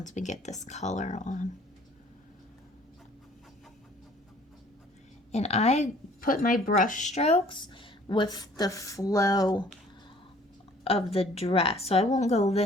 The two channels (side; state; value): both; normal; correlation 0.55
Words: we get this color on. And I put my brush strokes with the flow of the dress. So I won't go